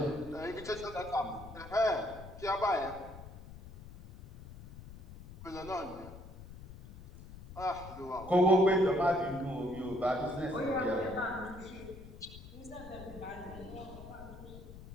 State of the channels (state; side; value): noise; left; rumble, 15 dB below the sound